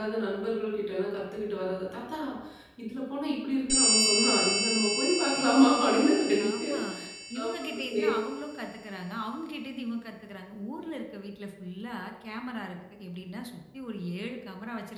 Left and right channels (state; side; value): identical; both; correlation 1.00